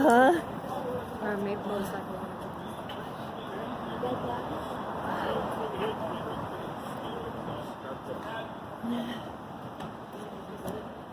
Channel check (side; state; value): both; identical; correlation 1.00